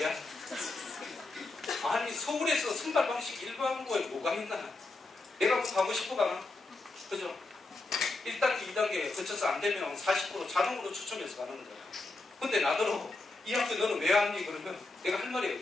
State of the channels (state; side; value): quieter; right; 3.2 dB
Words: 아니 서울에서 선발 방식 일반고에 뭐가 있나? 내가 뭐 가고 싶어 가나? 그죠? 1단계, 2단계 거쳐서 안 되면 40% 자동으로 추첨해서 가는 거잖아. 근데 나더러 이 학교 너는 왜 왔니? 그러면 내가 할 말이